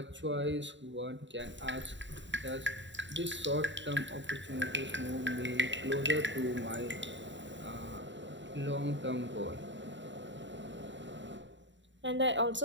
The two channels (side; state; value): left; late; 0.54 ms